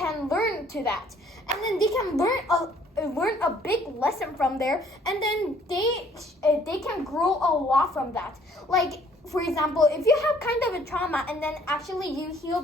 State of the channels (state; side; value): normal; both; correlation 0.60